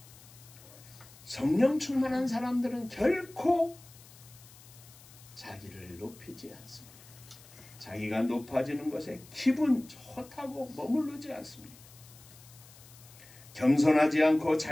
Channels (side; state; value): left; noise; hiss, 22 dB below the sound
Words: 성령 충만한 사람들은 결코 자기를 높이지 않습니다. 자기가 높아지는 것에 기분 좋다고 머무르지 않습니다. 겸손하지 않고